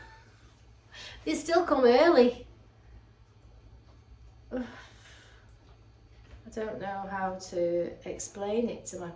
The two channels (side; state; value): both; identical; correlation 1.00